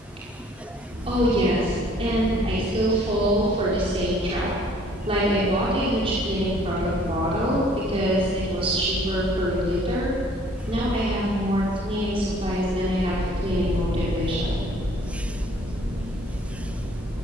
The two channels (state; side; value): normal; both; correlation 0.57